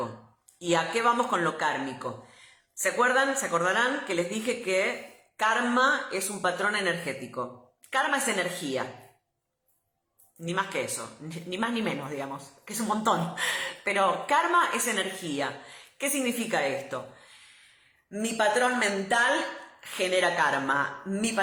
¿Y a qué vamos con lo kármico? ¿Se acuerdan? ¿Se acordarán que les dije que karma es un patrón energético? Karma es energía. Ni más que eso. Ni más ni menos, digamos. Que es un montón. Pero karma es energía. ¿Qué significa esto? Mi patrón mental genera karma. Mi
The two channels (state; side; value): identical; both; correlation 1.00